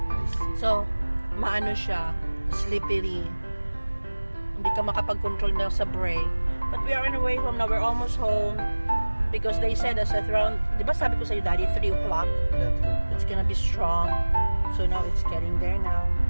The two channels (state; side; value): inverted; both; correlation -1.00